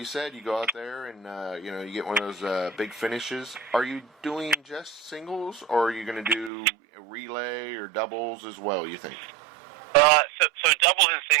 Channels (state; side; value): drops out; left; at 6.5 s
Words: said, you go out there and you get one of those big finishes. Are you doing just singles, or are you going to do a relay or doubles as well, you think? So doubles and